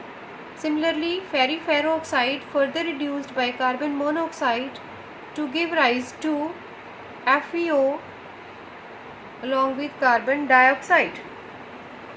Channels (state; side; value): identical; both; correlation 1.00